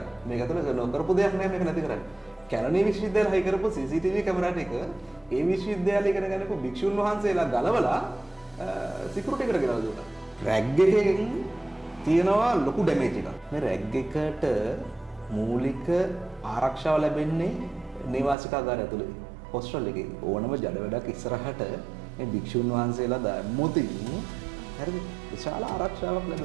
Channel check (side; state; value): left; drops out; at 18.4 s